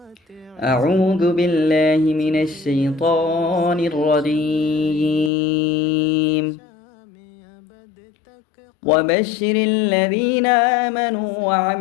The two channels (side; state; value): right; drops out; at 5.3 s